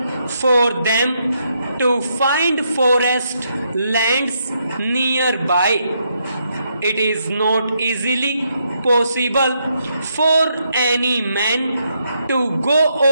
for them to find forest lands nearby. It is not easily possible for any man to go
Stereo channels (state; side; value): inverted; both; correlation -0.78